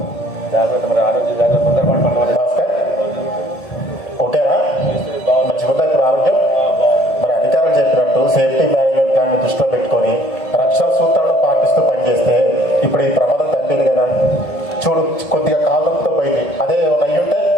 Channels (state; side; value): late; right; 1.7 ms